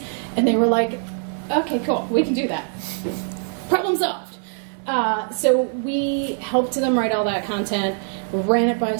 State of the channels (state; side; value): silent; left; 57 dB below the other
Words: And they were like, okay, cool, we can do that. Problem solved. So we helped them write all that content, ran it by